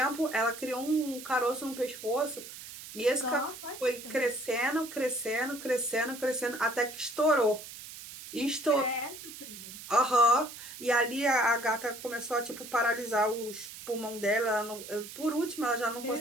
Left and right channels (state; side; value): noise; right; hiss, 13 dB below the sound